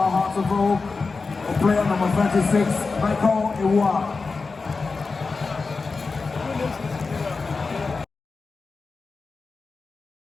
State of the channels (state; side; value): quieter; right; 4.3 dB